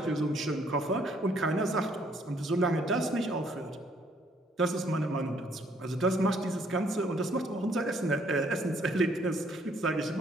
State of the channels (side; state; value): both; normal; correlation 0.65